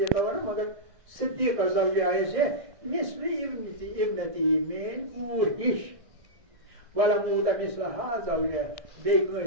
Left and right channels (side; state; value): left; late; 1.6 ms